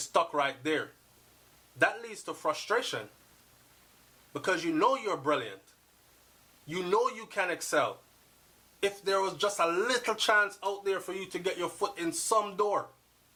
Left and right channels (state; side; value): identical; both; correlation 1.00